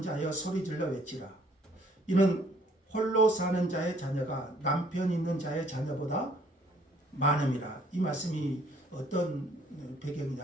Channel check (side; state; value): both; normal; correlation 0.61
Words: 자여 소리질러 외치라. 이는 홀로 사는 자의 자녀가 남편 있는 자의 자녀보다 많음이라. 이 말씀이 어떤